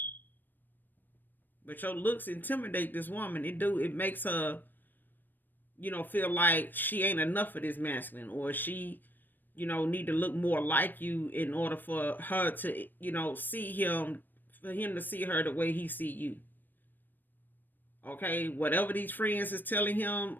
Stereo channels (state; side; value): late; right; 0.091 ms